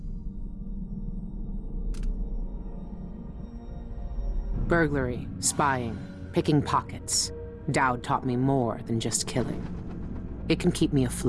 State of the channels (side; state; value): both; identical; correlation 1.00